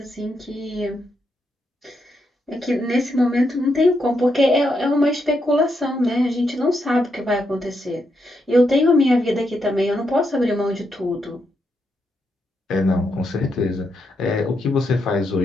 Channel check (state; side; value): normal; both; correlation 0.81